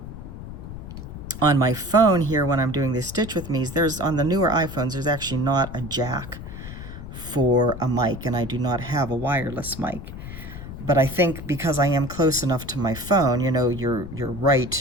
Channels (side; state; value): left; noise; rumble, 11 dB below the sound